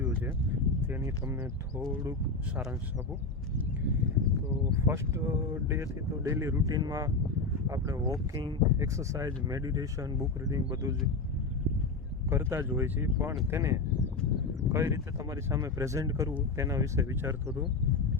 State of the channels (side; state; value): right; quieter; 3.8 dB